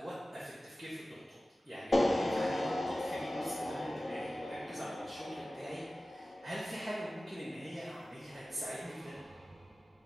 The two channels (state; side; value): normal; both; correlation 0.96